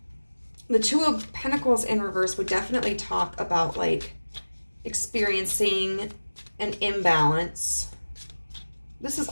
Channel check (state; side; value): inverted; both; correlation -1.00